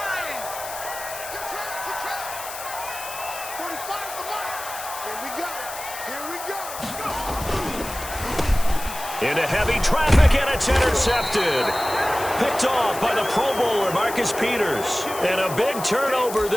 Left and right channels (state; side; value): noise; left; hiss, 10 dB below the sound